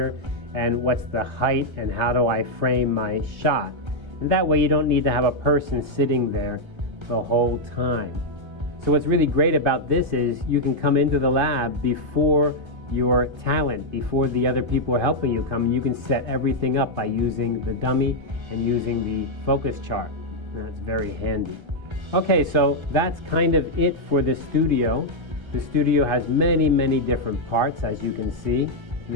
and what's the height, and how do I frame my shot. And that way you don't need to have a person sitting there the whole time. So what's really great about this is you can come into the lab before your talent, before the other people are helping you come, and you can set everything up by using the dummy and using the focus chart. And that's very handy. Okay, so that's kind of it for the studio. The studio has many, many different parts, as you can see.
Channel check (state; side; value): late; left; 1.3 ms